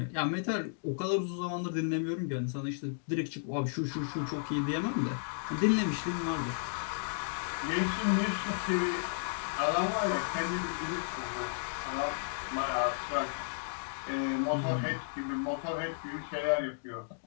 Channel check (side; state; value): right; silent; digital silence